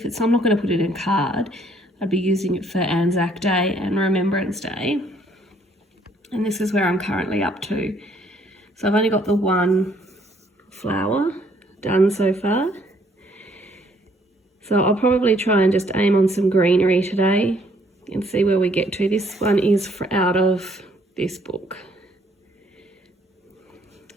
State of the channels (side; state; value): both; normal; correlation 0.65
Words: So I'm not going to put it in card. I'd be using it for Anzac Day and Remembrance Day. And this is where I'm currently up to. So I've only got the 1 flower done so far. So I'll probably try and just aim on some greenery today and see where we get to. This one is out of this book.